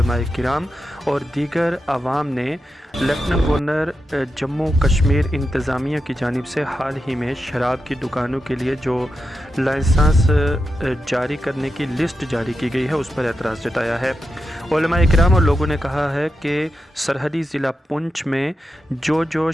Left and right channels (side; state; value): both; normal; correlation 0.88